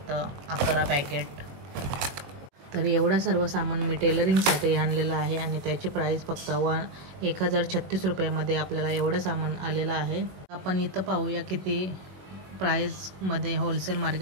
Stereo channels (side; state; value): left; late; 21 ms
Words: 11 पॅकेट. तर एवढं सर्व सामान मी टेलरिंगसाठी आणलेलं आहे आणि त्याची प्राईस फक्त 1036 रुपयामध्ये आपल्याला एवढं सामान आलेलं आहे. आपण इथं पाहूया किती प्राईसमध्ये होलसेल